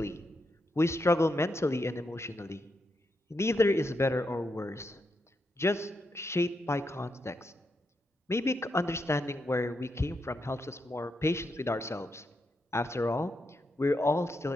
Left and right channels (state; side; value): normal; both; correlation 0.82